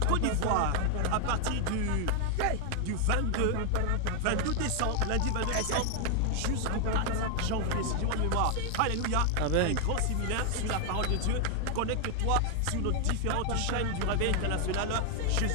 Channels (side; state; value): both; different; correlation 0.00